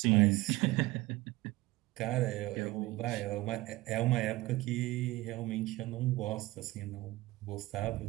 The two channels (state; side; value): quieter; left; 19.3 dB